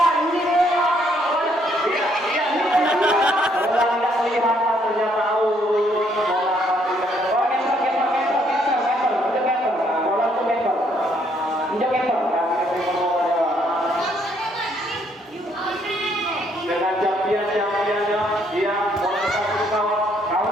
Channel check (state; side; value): normal; both; correlation 0.69